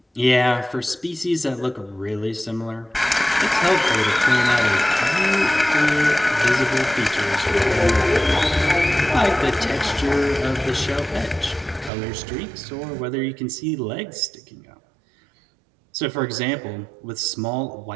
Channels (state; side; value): drops out; left; at 11.9 s